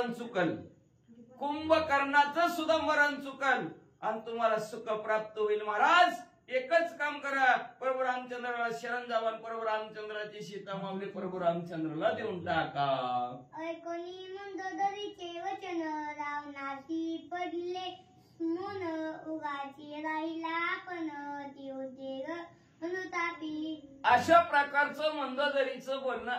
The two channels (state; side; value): identical; both; correlation 1.00